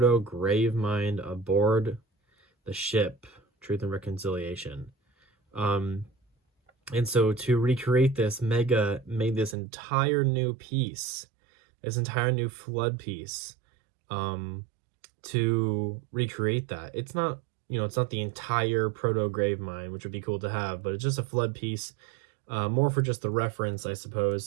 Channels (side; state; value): left; drops out; at 9.6 s